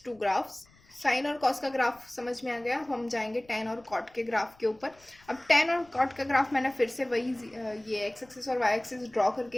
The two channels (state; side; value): noise; left; rumble, 29 dB below the sound